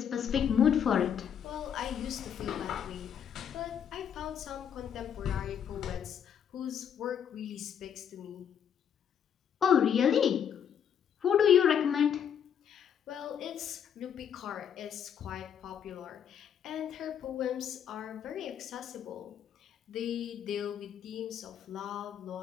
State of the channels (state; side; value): quieter; right; 8.5 dB